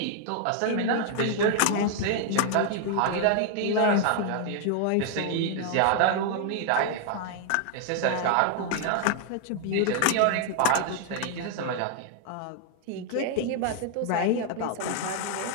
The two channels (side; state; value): both; different; correlation 0.00